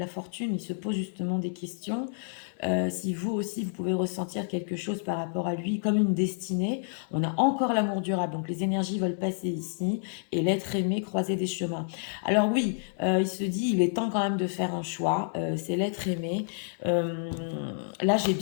fortune. Il se pose justement des questions. Si vous aussi, vous pouvez ressentir quelque chose par rapport à lui, comme une destinée. On a encore l'amour durable, donc les énergies veulent passer ici, et l'être aimé croiser des chemins. Alors oui, il se dit, il est temps quand même de faire un choix, c'est l'être aimé. Là, j'ai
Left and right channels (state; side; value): silent; right; digital silence